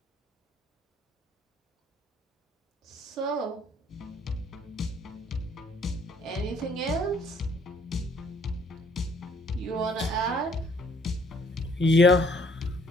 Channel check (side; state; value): both; normal; correlation 0.62